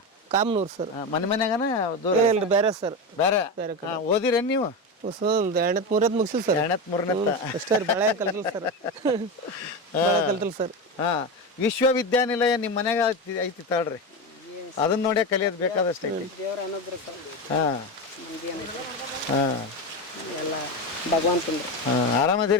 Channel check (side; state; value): both; normal; correlation 0.19